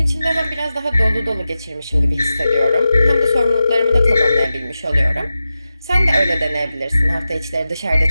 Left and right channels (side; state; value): both; inverted; correlation -0.92